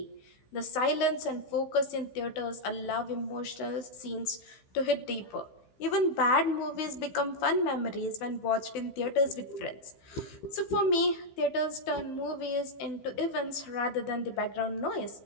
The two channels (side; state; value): right; late; 15 ms